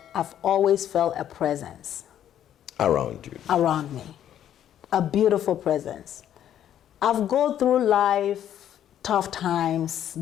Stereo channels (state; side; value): quieter; right; 10.6 dB